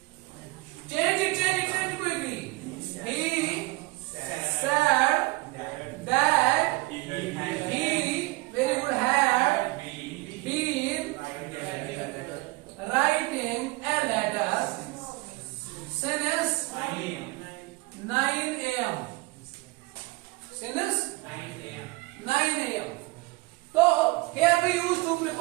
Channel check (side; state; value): left; quieter; 23.4 dB